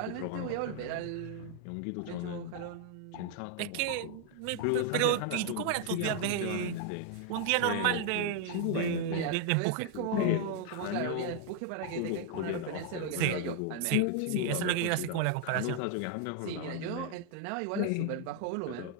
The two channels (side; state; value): both; different; correlation 0.00